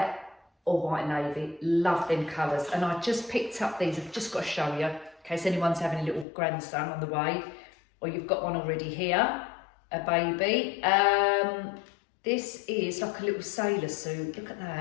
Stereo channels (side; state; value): right; drops out; at 6.2 s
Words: or white navy. Love them colours. And I just picked up these. I've just got to show you in case anyone's having a little grandson on the way, or you've got one already here, a baby. This is like a little sailor suit. Look at